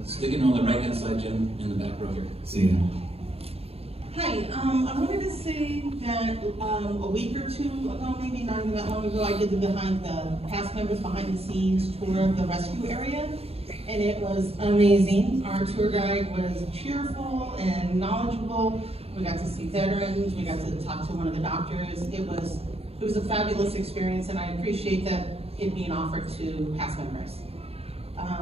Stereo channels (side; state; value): left; late; 0.29 ms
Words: Sticking on the right-hand side, Jim, in the back row here. See ya. Hi, I wanted to say that a week or two ago, maybe not even that long ago, I did the past members behind the scenes tour of the rescue area, and it was amazing. Our tour guide was cheerful and knowledgeable. We got to see veterans. We got to talk to one of the doctors. It was a fabulous experience, and I appreciate that it being offered to past members.